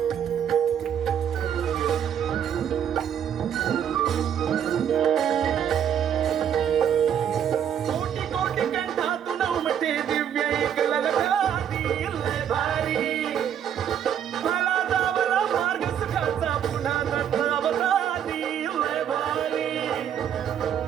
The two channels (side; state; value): left; quieter; 9.1 dB